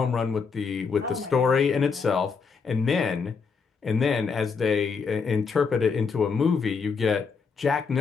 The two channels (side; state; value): right; quieter; 5.4 dB